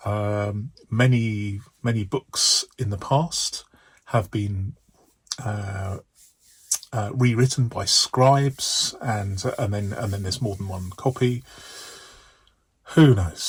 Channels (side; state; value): both; identical; correlation 1.00